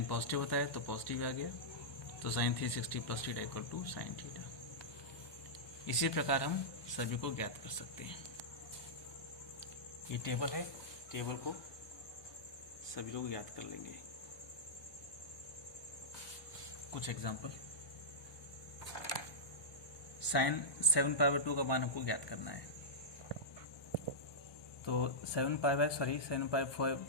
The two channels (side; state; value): right; late; 1.2 ms